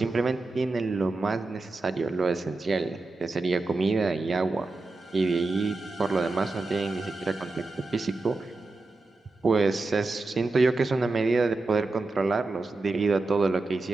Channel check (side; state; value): left; quieter; 3.4 dB